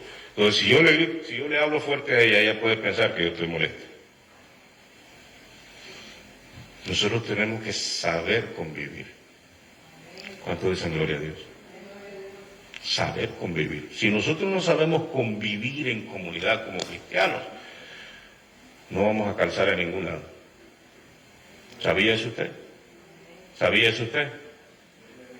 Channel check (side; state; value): both; identical; correlation 1.00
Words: Entonces, si yo le hablo fuerte a ella puede pensar que yo estoy molesto. Nosotros tenemos que saber convivir. ¿Cuánto dicen gloria a Dios? Saber convivir. Si nosotros no sabemos convivir en comunidad como cristianos, no vamos a calzar en ningún lado. ¿Sabía eso usted? ¿Sabía eso usted?